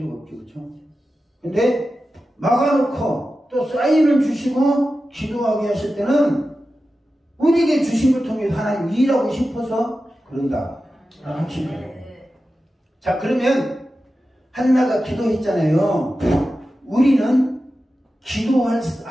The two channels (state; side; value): normal; both; correlation 0.93